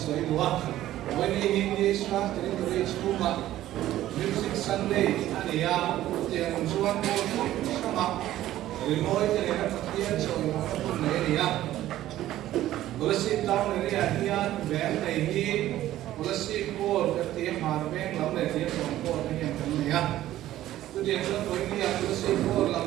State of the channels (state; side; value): quieter; left; 13.9 dB